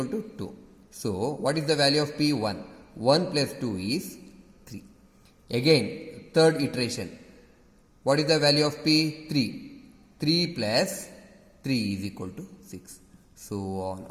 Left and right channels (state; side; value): identical; both; correlation 1.00